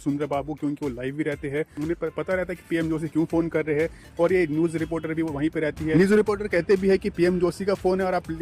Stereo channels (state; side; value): identical; both; correlation 1.00